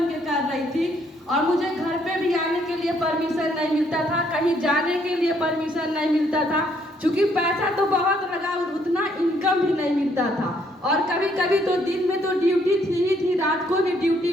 के कर रही थी, और मुझे घर पे भी आने के लिए परमिशन नहीं मिलता था, कहीं जाने के लिए परमिशन नहीं मिलता था। क्योंकि पैसा तो बहुत लगा और उतना इनकम भी नहीं मिलता था। और कभी कभी तो दिन में तो ड्यूटी थी ही थी, रात को भी ड्यूटी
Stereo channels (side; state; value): both; normal; correlation 0.69